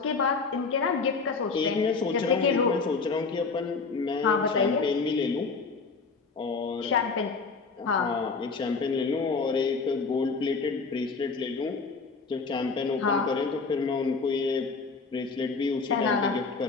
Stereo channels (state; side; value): quieter; right; 4.6 dB